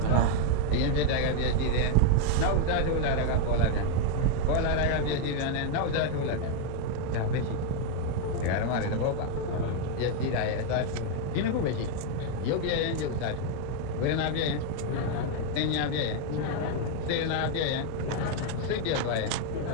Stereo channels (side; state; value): both; different; correlation 0.00